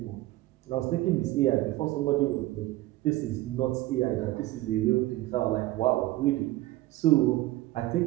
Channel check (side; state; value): left; quieter; 17.3 dB